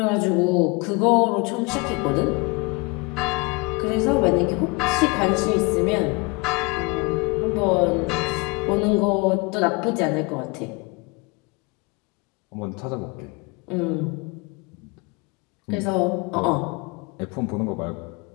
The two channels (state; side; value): quieter; right; 27.8 dB